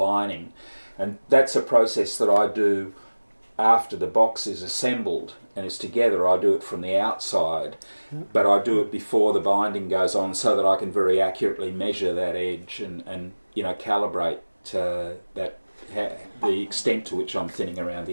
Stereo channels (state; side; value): inverted; both; correlation -1.00